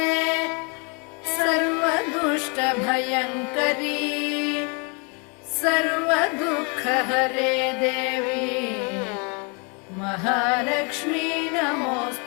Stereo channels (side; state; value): right; quieter; 33.6 dB